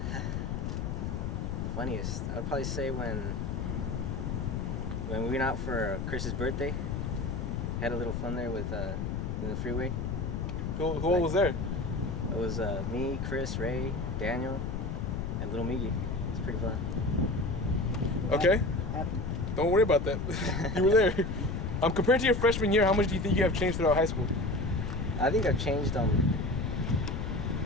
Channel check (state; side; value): noise; left; rumble, 2 dB below the sound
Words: Funniest, I would probably say when we went out for Chris's birthday. Had a little fun there with in the freeway. Who all was there? It was me, Chris, Ray, Daniel, and little Miggy. It's pretty fun. Okay. Don't worry about that. You were there. Compared to your freshman year, how much do you think you have changed throughout high school? I think I've changed